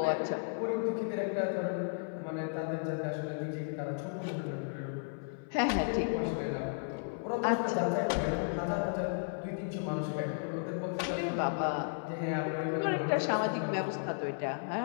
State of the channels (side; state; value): right; silent; 55 dB below the other